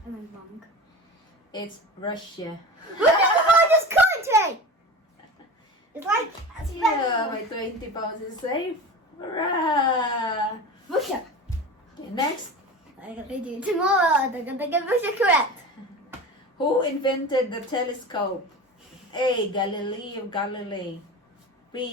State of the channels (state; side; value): normal; both; correlation 0.31